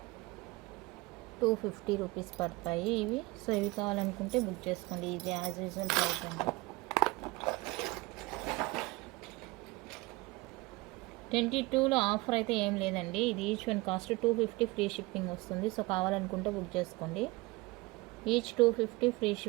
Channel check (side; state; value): left; quieter; 22.9 dB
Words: రూపీస్ పడతాయి ఇవి. సో ఇవి కావాలనుకుంటే బుక్ చేసుకోండి. ఇది యాజ్ యూజువల్ ప్రైస్ అండి. 22లో ఆఫర్ అయితే ఏం లేదండి. ఇది each one cost 250 free shipping వస్తుంది. సో కావాలనుకుంటే బుక్ చేసుకోండి. ఈచ్ 250 ఫ్రీ